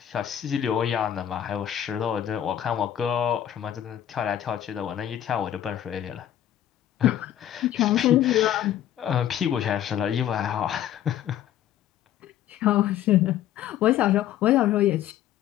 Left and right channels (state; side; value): quieter; right; 11.2 dB